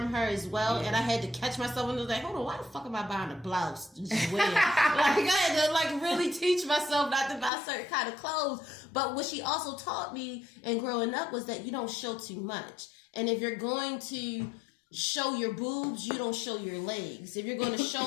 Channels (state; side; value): drops out; right; at 7.5 s